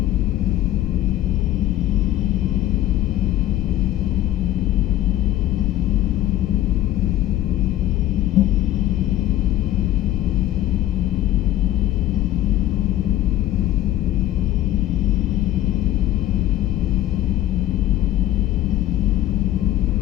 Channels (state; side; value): quieter; right; 13.7 dB